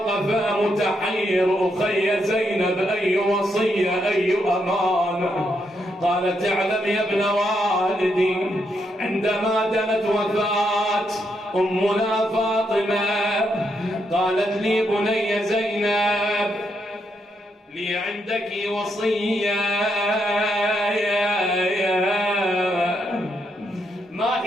متحير، أخي زينب أي وصية أي أمانة؟ قالت اعلم يا ابن والدي، عندما دنت وفاة أمنا فاطمة قالت لي بني زينب لي عندك وصية. ما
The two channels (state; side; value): normal; both; correlation 0.79